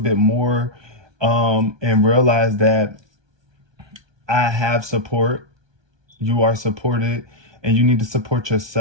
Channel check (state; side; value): late; left; 1.2 ms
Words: more, and realize that I have support. You are supported, and you need to support